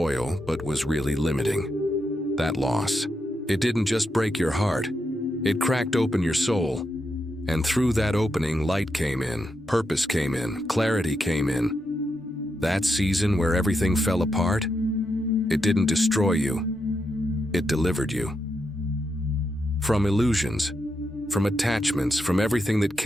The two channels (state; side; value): normal; both; correlation 0.84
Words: but was really limiting. That loss, it didn't just break your heart, it cracked open your soul. And through that opening, light came in, purpose came in, clarity came in. That season where everything fell apart, it didn't destroy you, it delivered you. From illusions, from attachments, from everything that